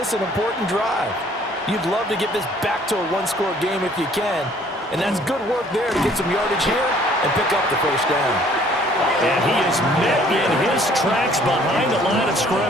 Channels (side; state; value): both; normal; correlation 0.58